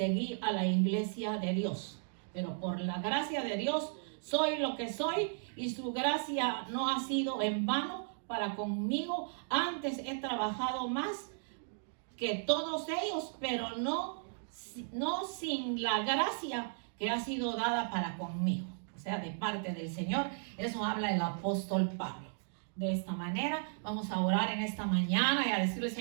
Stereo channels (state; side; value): silent; left; digital silence